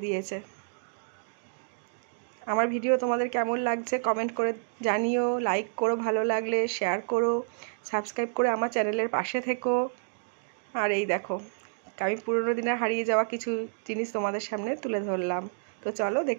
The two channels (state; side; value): silent; left; digital silence